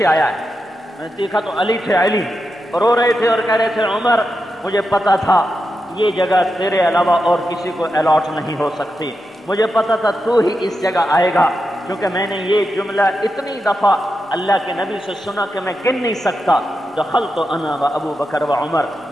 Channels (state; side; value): normal; both; correlation 0.88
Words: آیا ہے، میں نے دیکھا تو علی تھے، علی رو رہے تھے اور کہہ رہے تھے عمر مجھے پتا تھا یہ جگہ تیرے علاوہ اور کسی کو الاٹ نہیں ہو سکتی، مجھے پتا تھا تو ہی اس جگہ آئے گا، کیونکہ میں نے یہ جملہ اتنی دفعہ اللہ کے نبی سے سنا کہ میں گن نہیں سکتا، دخلت انا و ابو بکر و عمر